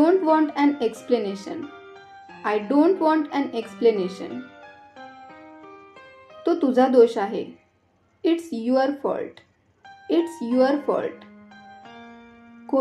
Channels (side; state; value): both; identical; correlation 1.00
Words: want an explanation. I don't want an explanation. तो तुझा दोष आहे. It's your fault. It's your fault.